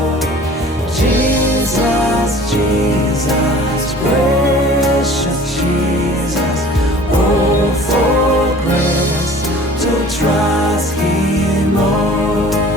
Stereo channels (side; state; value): both; normal; correlation 0.46